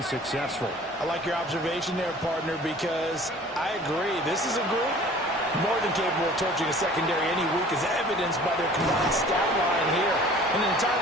successful. I like your observation there, partner, because I agree. This is a group more than capable of torching a secondary any week, as evidenced by their combined stat line here. And in the time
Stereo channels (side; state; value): both; normal; correlation 0.48